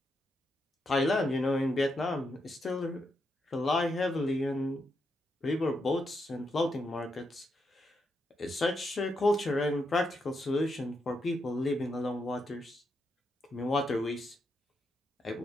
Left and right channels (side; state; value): both; normal; correlation 0.82